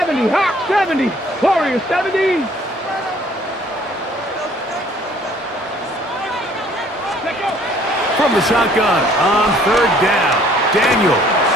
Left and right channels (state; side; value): normal; both; correlation 0.58